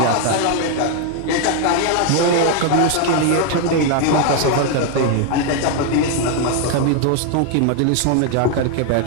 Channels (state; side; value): different; both; correlation 0.00